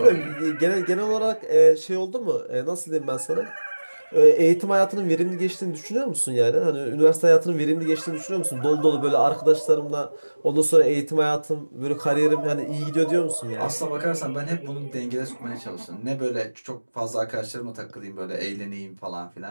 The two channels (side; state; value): both; inverted; correlation -1.00